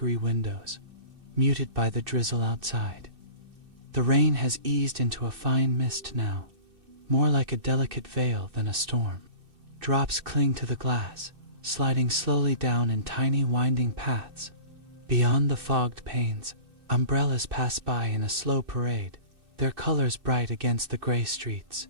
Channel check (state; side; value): late; left; 2.6 ms